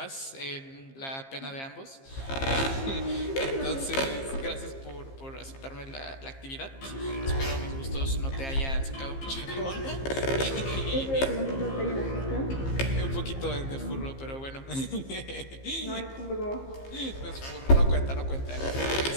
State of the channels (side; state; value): right; late; 15 ms